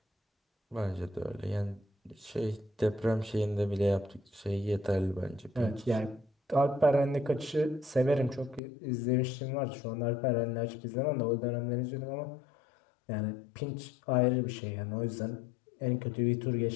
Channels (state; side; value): drops out; right; at 8.6 s